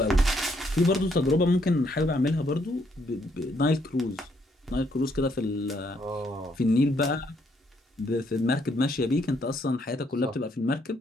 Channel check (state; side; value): normal; both; correlation 0.72